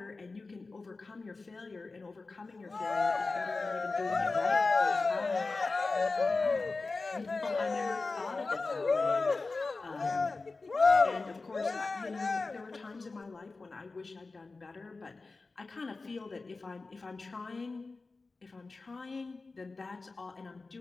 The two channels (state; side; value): quieter; right; 3.8 dB